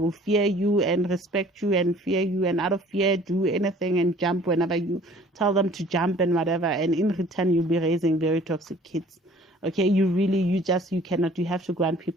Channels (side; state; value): both; normal; correlation 0.52